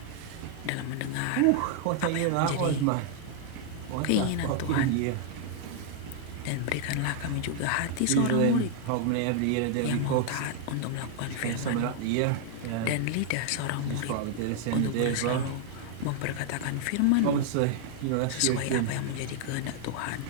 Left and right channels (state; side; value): different; both; correlation 0.00